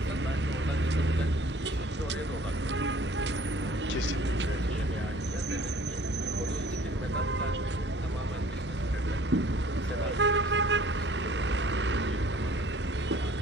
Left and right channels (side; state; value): both; normal; correlation 0.53